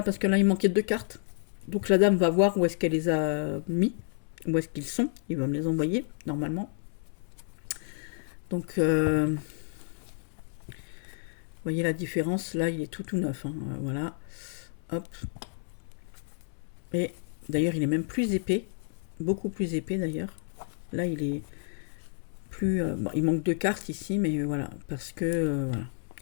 parce que là il manquait 2 cartes. Donc la dame va voir où est-ce qu'elle les a mis, où est-ce qu'ils sont. Il va me les envoyer normalement. Donc vous voyez la différence, là il est tout neuf. Hein. Voilà. Hop. Et d'ailleurs il est même plus épais, beaucoup plus épais d'ailleurs. Là il est plus... bon, il manque 2 cartes ici, mais voilà, parce que... voilà.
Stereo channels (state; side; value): silent; right; 58 dB below the other